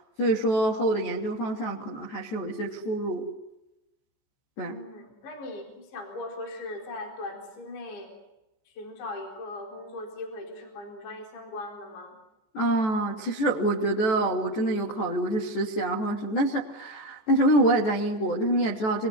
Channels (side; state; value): right; late; 14 ms